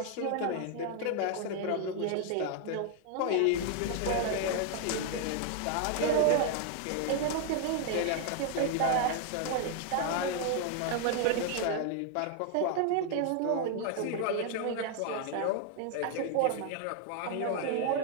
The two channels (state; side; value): different; both; correlation 0.00